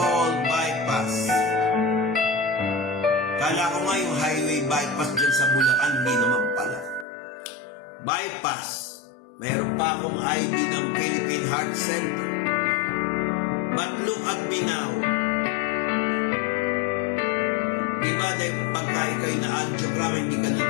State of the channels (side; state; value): right; drops out; at 7.1 s